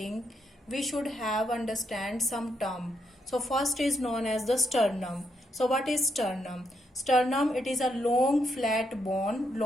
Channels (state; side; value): normal; both; correlation 0.79